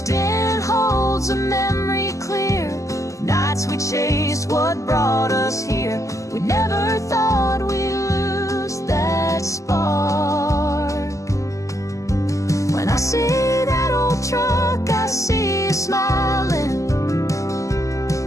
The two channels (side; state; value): right; late; 0.16 ms